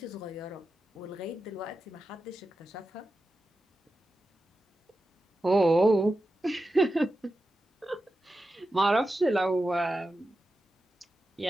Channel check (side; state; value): both; normal; correlation 0.91